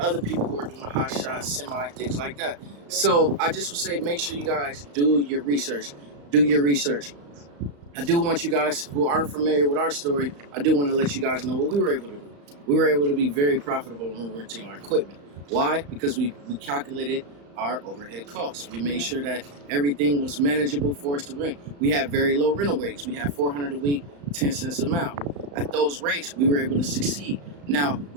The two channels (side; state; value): left; late; 35 ms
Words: other people who are doing hot shots, semi, things like that. So I just would say, make sure you guys do your research. Do your research. I do want you guys who aren't familiar with our story, I do want to let you guys know what we were able to do. We were able to be very profitable when renting our equipment. Why? Because we calculated our overhead costs. We made sure that everything was manageable for us to rent. We had very low rental rates. We had $400 a week, 10 cents a mile. At those rates, we were able to succeed. Now,